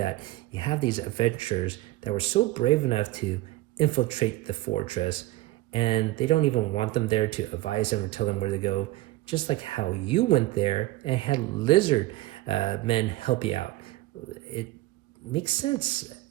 you have these adventurers that were so brave enough to infiltrate the fortress, and they don't even want them there to advise them or tell them where to go, just like how you went there and had lizard men help you out. It makes sense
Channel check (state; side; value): quieter; left; 17.8 dB